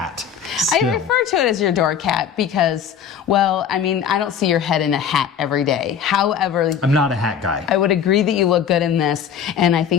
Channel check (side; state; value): right; quieter; 7.9 dB